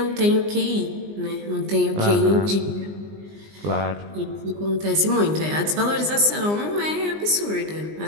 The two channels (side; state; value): left; late; 20 ms